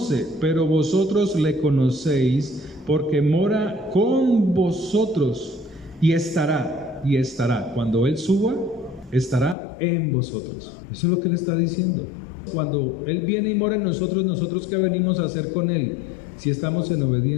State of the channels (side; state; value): right; drops out; at 9.6 s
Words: pero vosotros le conocéis, porque mora con vosotros y estará. Cuando Él suba, estará en vosotros. Eso es lo que Él está diciendo. Cuando Él viene y mora en nosotros, ¿nosotros qué venimos a hacer con Él? Si estamos en